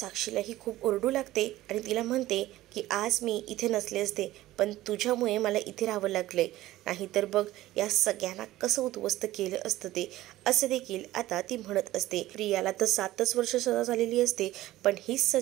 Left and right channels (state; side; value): quieter; left; 15.9 dB